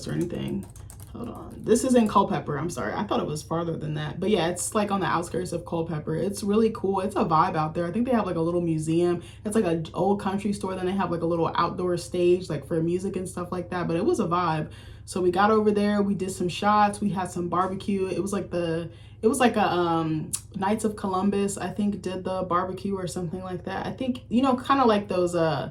or anything. Hold on. This is in Culpeper. I'm sorry. I thought it was farther than that. But yeah, it's like on the outskirts of Culpeper. It's really cool. It's a vibe out there. I think they have like a little museum. It's like an old country store. Then they have like a little outdoor stage like for music and stuff like that. But it was a vibe. So we got over there, we did some shots, we had some barbecue. It was like a Knights of Columbus, I think, did the barbecue or something like that. I think, you know, kind of like those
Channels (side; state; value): both; identical; correlation 1.00